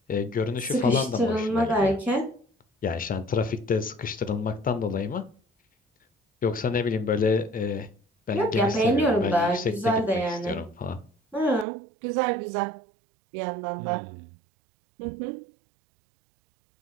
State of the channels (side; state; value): left; drops out; at 11.7 s